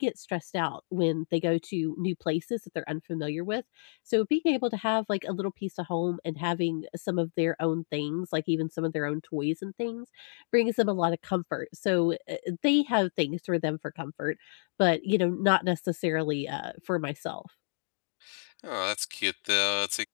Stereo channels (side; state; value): right; silent; digital silence